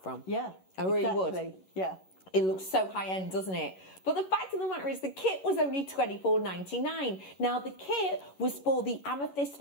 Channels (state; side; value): late; right; 11 ms